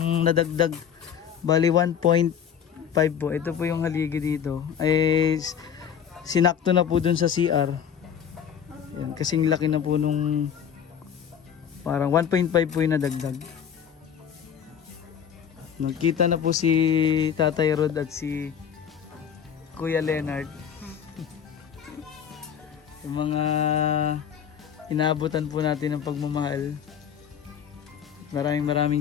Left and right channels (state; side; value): quieter; right; 8.2 dB